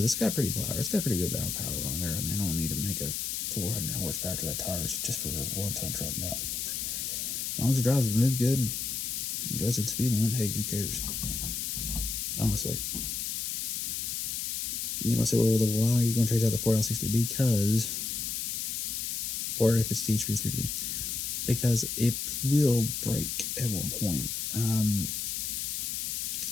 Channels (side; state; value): left; noise; hiss, 2 dB below the sound